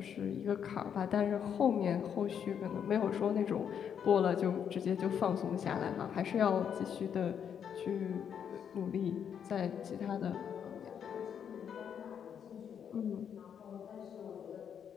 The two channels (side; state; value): right; quieter; 8.1 dB